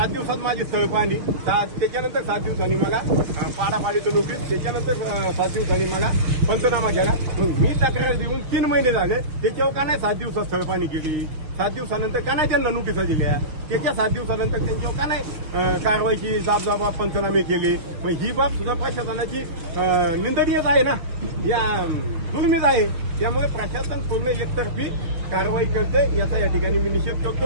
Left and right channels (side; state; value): left; late; 6.5 ms